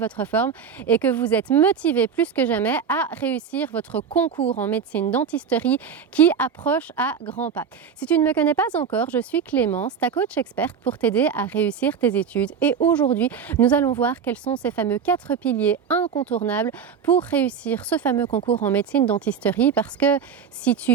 forme et que vous êtes motivés plus que jamais à réussir votre concours en médecine dentisterie qui approche à grands pas. Si tu ne me connais pas encore, je suis Clémence, ta coach experte pour t'aider à réussir tes études et aujourd'hui nous allons voir quels sont ces fameux 4 piliers incontournables pour réussir ce fameux concours en médecine dentisterie, parce que si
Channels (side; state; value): left; quieter; 6.9 dB